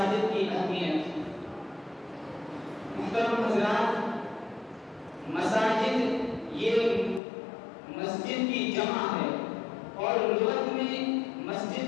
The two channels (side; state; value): right; drops out; at 7.2 s